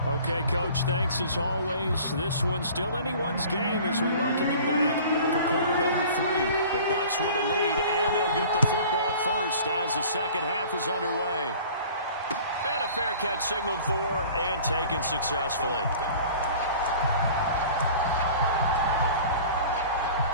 Okay, Coach, thanks as always. This one's still anyone's game as we welcome you back for quarter number 3. The Bucs with a lead, and they'll get the football first as the second half is underway. And a fair catch signaled for and taken successfully.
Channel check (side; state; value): both; inverted; correlation -0.45